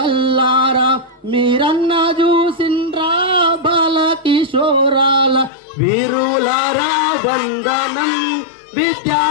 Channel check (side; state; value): right; drops out; at 5.5 s